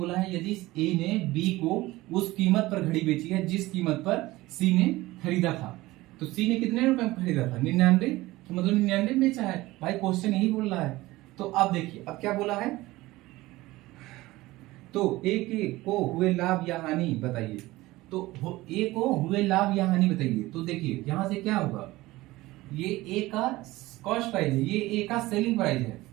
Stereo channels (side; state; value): left; quieter; 18.8 dB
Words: है यदि ए ने बी को उस कीमत पर घड़ी बेची है जिस कीमत पर सी ने खरीदा था। तो सी ने कितने रुपए में खरीदा था? 99, तो मतलब 99 में बेचा है। भाई क्वेश्चन यही बोल रहा है। तो अब देखिए अब क्या बोला है, तो ए के को हुए लाभ या हानि बताइए। तो ए को हुए लाभ या हानि बताइए। तो देखिए यहां से क्या होगा, ये ए का कॉस्ट प्राइस है, ये ए का सेलिंग प्राइस है,